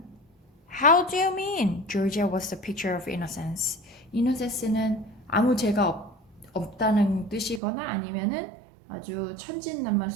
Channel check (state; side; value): drops out; left; at 7.6 s